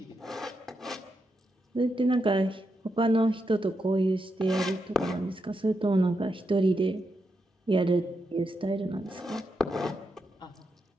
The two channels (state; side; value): normal; both; correlation 0.85